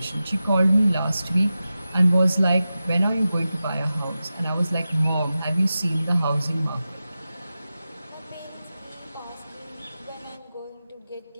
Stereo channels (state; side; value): inverted; both; correlation -0.93